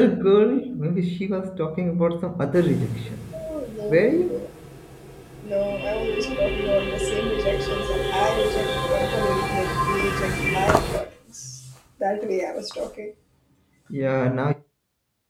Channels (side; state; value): both; identical; correlation 1.00